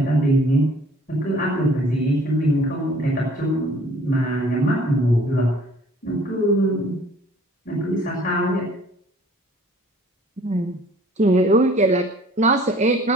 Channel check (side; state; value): both; normal; correlation 0.54